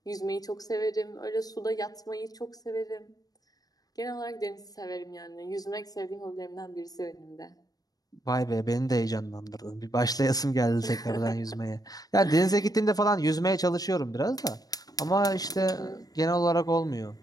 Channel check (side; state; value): right; late; 0.18 ms